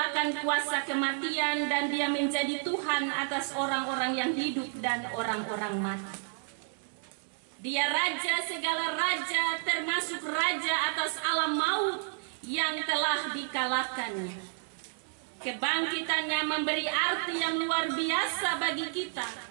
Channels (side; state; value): left; silent; 57 dB below the other